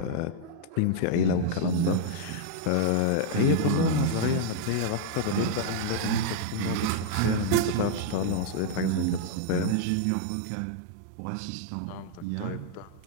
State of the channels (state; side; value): different; both; correlation -0.01